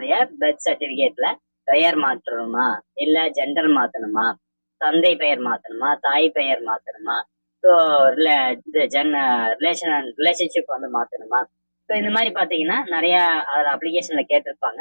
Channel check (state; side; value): inverted; both; correlation -1.00